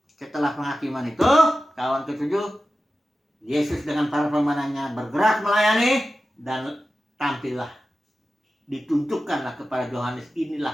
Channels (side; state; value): both; normal; correlation 0.94